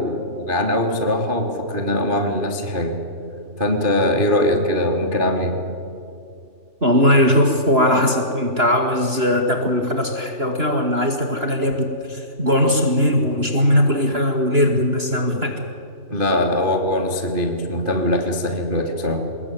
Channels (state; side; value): late; left; 2.9 ms